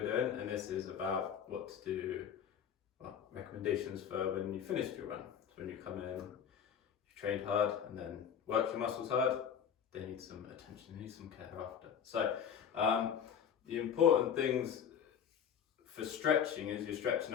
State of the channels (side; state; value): right; quieter; 8.1 dB